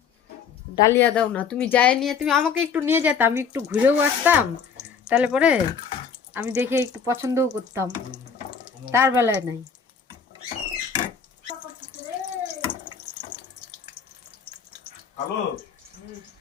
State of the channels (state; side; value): quieter; right; 6.4 dB